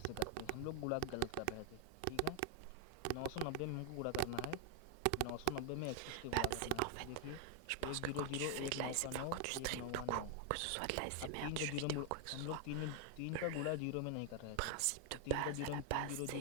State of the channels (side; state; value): both; different; correlation 0.00